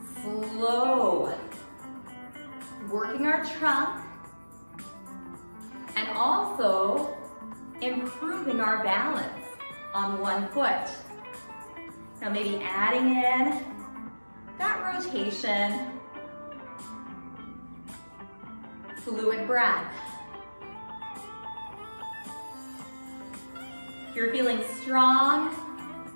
Slow. Working our trunk and also improving our balance on one foot. Now maybe adding in that rotation. Fluid breath. If you're feeling strong,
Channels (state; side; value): inverted; both; correlation -1.00